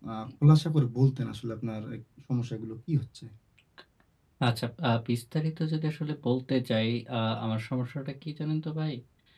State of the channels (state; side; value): identical; both; correlation 1.00